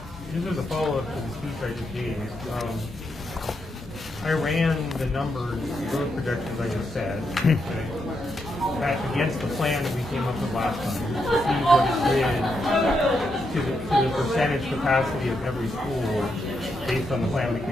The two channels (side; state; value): both; normal; correlation 0.82